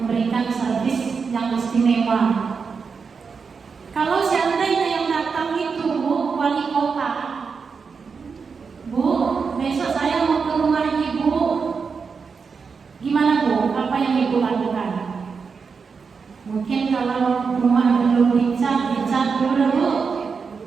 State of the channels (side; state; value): left; quieter; 5.4 dB